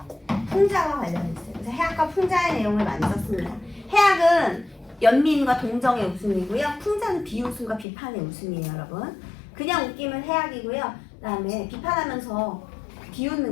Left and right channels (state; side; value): drops out; right; at 7.9 s